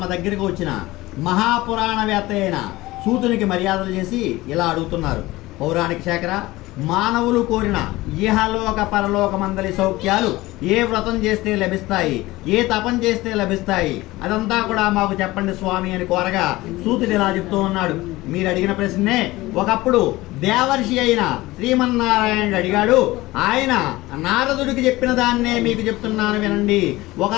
దగ్గరకు వచ్చిన మహాపురాణవేత్త అయిన సూతునికి మర్యాదలు చేసి ఇలా అడుగుతున్నారు. పౌరాణిక శేఖర, మానవులు కోరిన ఇహలోక పరలోక మందలి సౌఖ్యాలు ఏ వ్రతం చేస్తే లభిస్తాయి, ఏ తపం చేస్తే లభిస్తాయి, అదంతా కూడా మాకు చెప్పండి స్వామి అని కోరగా సూతుడు ఇలా చెప్తూ ఉన్నాడు. మీరు అడిగిన ప్రశ్నే ఒకప్పుడు దేవర్షి అయిన శ్రీమన్నారాయణుడు అడిగాడు. ఆయన నారదుడికి చెప్పిన దాన్నే మీకు చెప్తున్నాను వినండి.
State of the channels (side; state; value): right; quieter; 19.0 dB